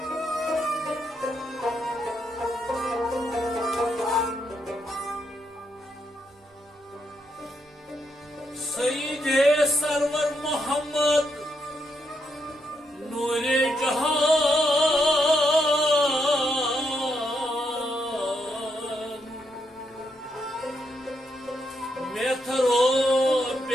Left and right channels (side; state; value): both; normal; correlation 0.79